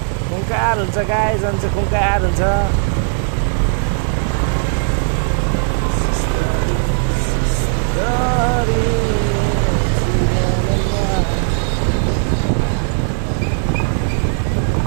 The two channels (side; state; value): left; silent; digital silence